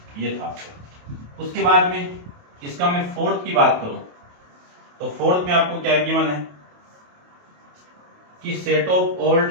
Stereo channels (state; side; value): late; left; 28 ms